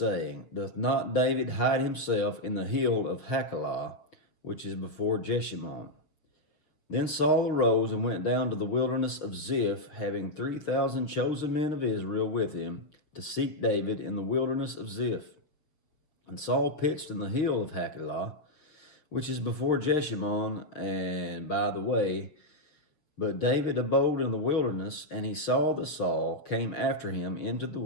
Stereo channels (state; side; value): late; right; 6.4 ms